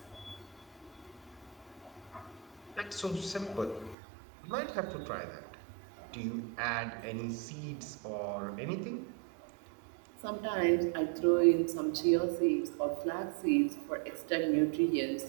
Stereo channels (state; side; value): drops out; left; at 4.0 s